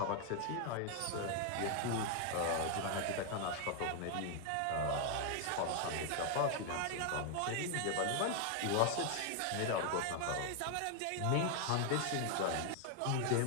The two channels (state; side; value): different; both; correlation 0.00